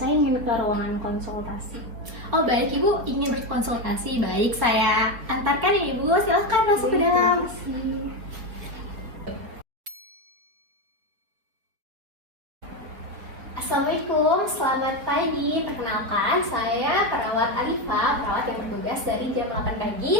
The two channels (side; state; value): left; late; 4.7 ms